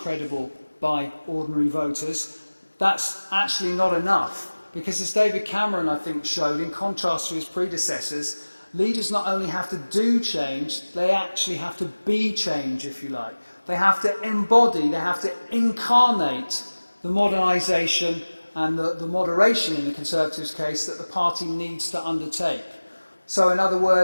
by ordinary voters, that's actually not enough. Because as David Cameron, I think, showed, in contrast to his predecessors, leaders not only have to do change, they actually have to be change, if you like. They have to embody, they have to incarnate the modernisation and the moderation, in the Conservatives' case, that the party needs to undertake. So, in other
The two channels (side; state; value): both; inverted; correlation -1.00